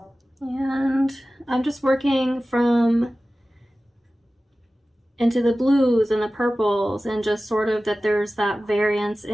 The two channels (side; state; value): both; normal; correlation 0.96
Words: And I'm just working from into the blues and the purples, and just sort of that there's that variance